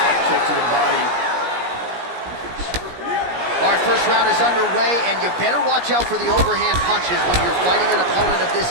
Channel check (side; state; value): left; late; 17 ms